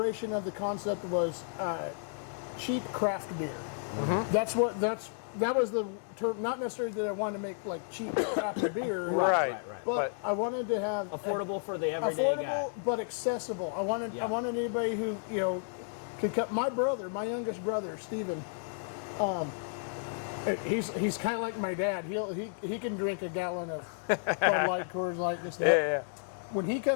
of the concept was cheap craft beer. Mm-hmm. That was the term. Not necessarily that I wanted to make like cheap craft beer, right. But I wanted to have affordable for the everyday guy. But accessible. I wanted anybody who could come. My youngest brother, Stephen. He's kind of like my dad. He can drink a gallon of Bud Light, Coors Light, this that. Yeah. When he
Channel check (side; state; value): right; silent; 56 dB below the other